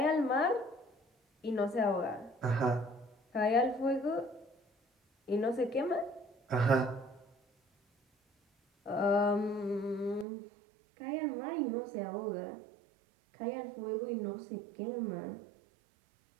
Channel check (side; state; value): left; drops out; at 10.2 s